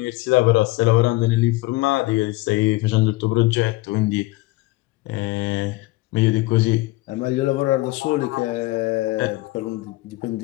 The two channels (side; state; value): right; quieter; 20.0 dB